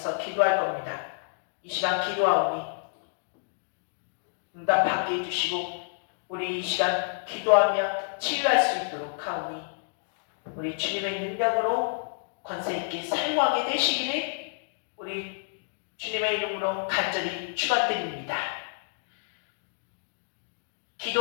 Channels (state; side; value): silent; right; digital silence